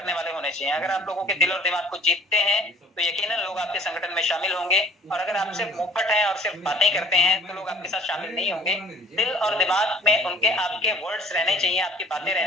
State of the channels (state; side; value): normal; both; correlation 0.53